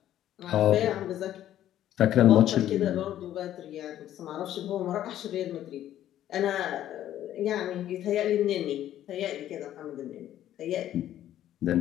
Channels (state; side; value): quieter; right; 12.1 dB